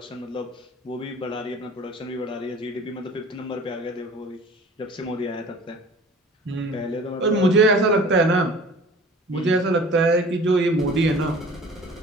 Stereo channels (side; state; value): both; normal; correlation 0.46